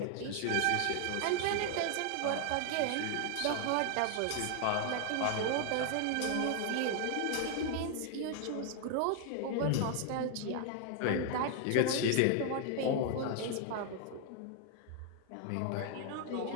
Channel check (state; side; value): different; both; correlation 0.00